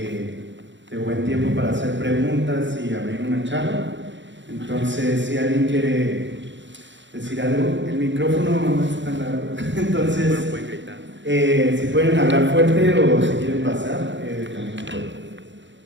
buen tiempo para hacer preguntas y abrir una charla. Entonces, si alguien quiere decir algo, el micrófono no es tan largo. Entonces, si pueden hablar fuerte o si quieren pasar, también pueden.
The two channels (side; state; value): left; late; 0.54 ms